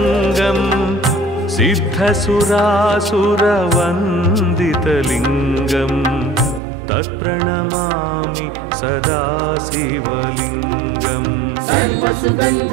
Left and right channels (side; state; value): left; drops out; at 6.6 s